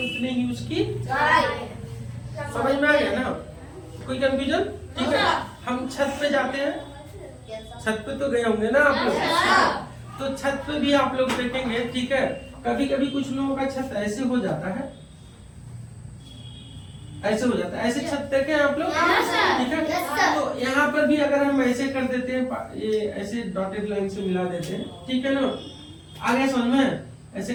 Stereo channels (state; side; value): identical; both; correlation 1.00